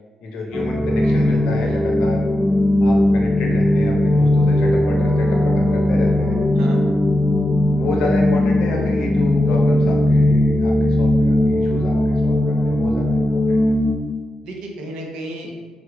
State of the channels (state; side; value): normal; both; correlation 0.90